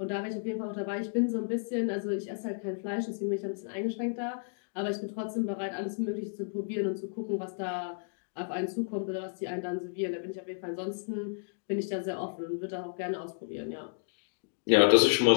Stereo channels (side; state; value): right; silent; digital silence